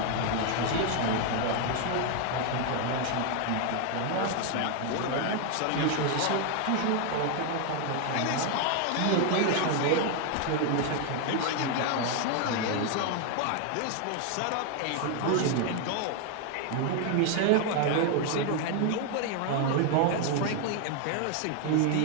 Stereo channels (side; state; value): both; different; correlation 0.00